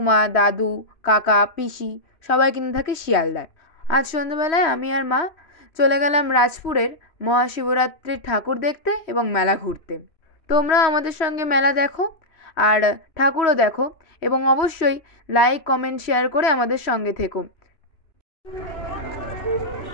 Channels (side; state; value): right; late; 2.9 ms